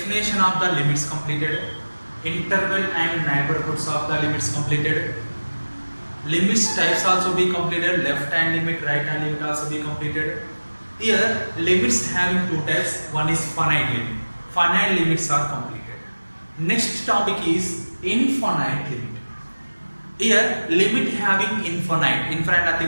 of the limits completed, interval and neighborhoods of the limits completed, limits types also be completed, left hand limit, right hand limit also be completed. Here, limits having two types, one is finite limit. Finite limits are completed. Next topic is infinite limit. Here, limit having infinite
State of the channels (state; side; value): inverted; both; correlation -1.00